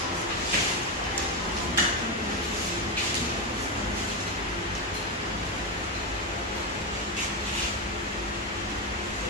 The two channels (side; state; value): both; normal; correlation 0.09